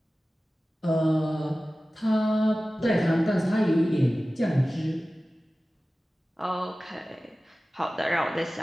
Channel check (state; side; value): normal; both; correlation 0.96